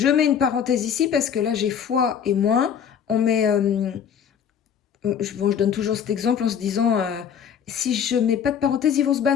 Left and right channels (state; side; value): quieter; right; 8.0 dB